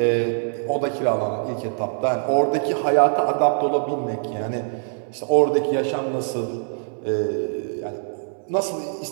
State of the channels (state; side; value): silent; left; 63 dB below the other